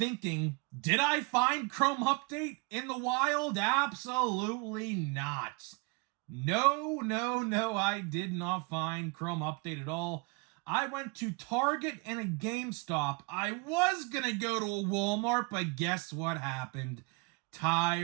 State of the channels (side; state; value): left; quieter; 30.3 dB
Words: did I find Chrome Update in the wild? Absolutely not. No, I did not find Chrome Update at all. I went to Target and a GameStop. I was going to go to a Walmart, but guess what happened?